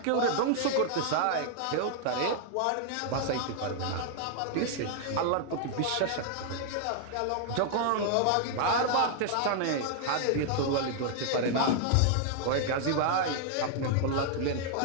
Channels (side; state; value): both; different; correlation 0.00